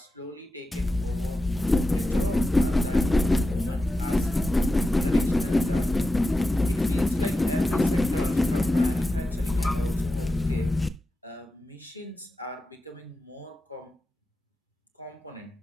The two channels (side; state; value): both; normal; correlation 0.91